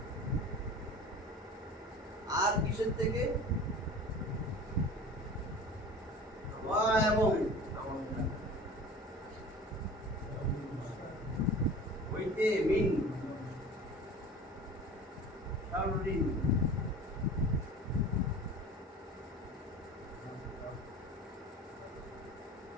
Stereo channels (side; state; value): both; normal; correlation 0.39